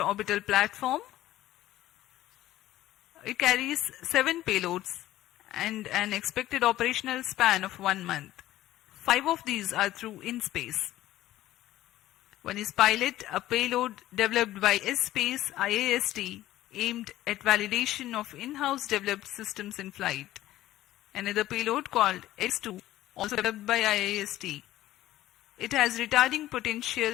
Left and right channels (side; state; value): right; quieter; 14.7 dB